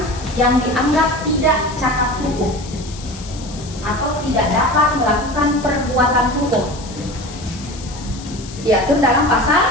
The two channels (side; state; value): left; noise; hiss, 16 dB below the sound